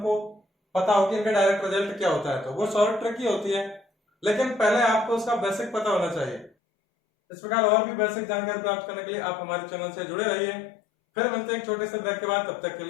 पता हो कि इनका डायरेक्ट रिजल्ट क्या होता है तो वो शॉर्ट ट्रिक ही होती है, लेकिन पहले आपको उसका बेसिक पता होना चाहिए। इस प्रकार और भी बेसिक जानकारी प्राप्त करने के लिए आप हमारे चैनल से जुड़े रहिए। फिर मिलते हैं एक छोटे से ब्रेक के बाद, तब तक के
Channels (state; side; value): drops out; right; at 6.5 s